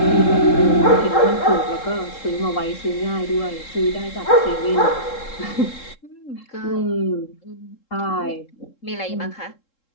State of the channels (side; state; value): right; late; 3.7 ms